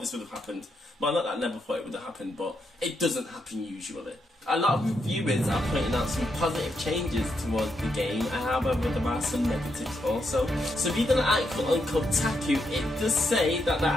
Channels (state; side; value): normal; both; correlation 0.81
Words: would have happened. Well, not that I never thought it would have happened, but it doesn't happen usually. A lot of reviewers are pointing out some positive changes towards the game, however there are some negatives also. So reading an article on Kotaku, it does say that there